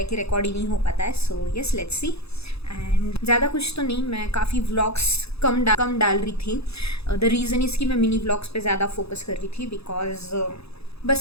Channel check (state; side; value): late; right; 0.78 ms